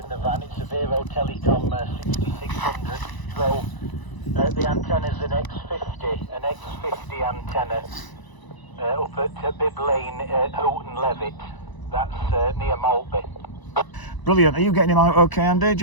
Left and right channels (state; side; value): late; right; 1.0 ms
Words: the van. It's a Vero Telecom 6600. So the antenna's an X50 antenna up at Bib Lane, Houghton Levitt. That's near Maltby. Brilliant. Are you getting him out okay, Andy? Do